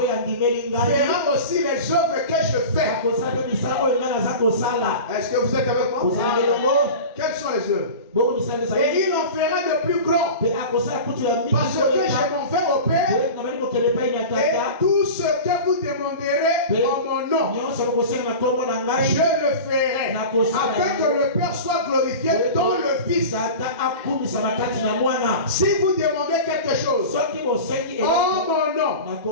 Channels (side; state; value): both; inverted; correlation -0.32